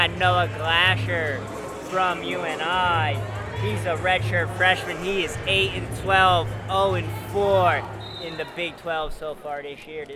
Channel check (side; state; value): both; identical; correlation 1.00